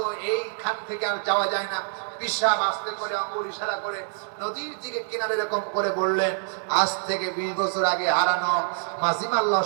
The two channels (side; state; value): left; silent; digital silence